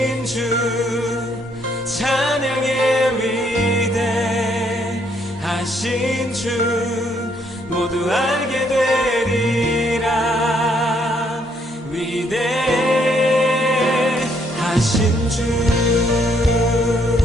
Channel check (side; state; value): both; normal; correlation 0.70